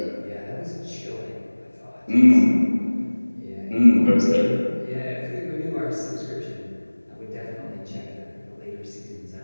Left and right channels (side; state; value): both; inverted; correlation -1.00